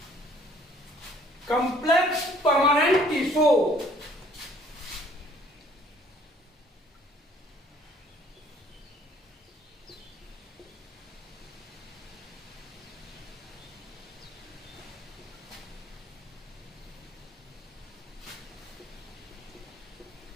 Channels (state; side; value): normal; both; correlation 0.59